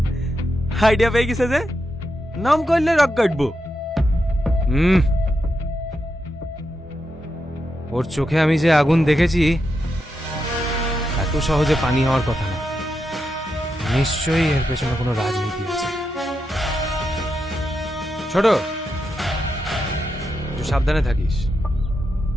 আইডিয়া পেয়ে গেছে যে নাম করলে রক কাটবো। ওর চোখে আমি যে আগুন দেখেছি এত সহজে পানি হওয়ার কথা না। নিশ্চয়ই এর পেছনে কোনো রাজনীতি আছে। ছোট, একটু সাবধানে থাকিস।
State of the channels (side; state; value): both; normal; correlation 0.85